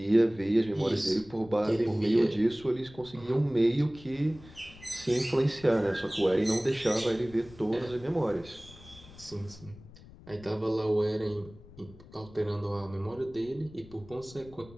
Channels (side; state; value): left; noise; rumble, 20 dB below the sound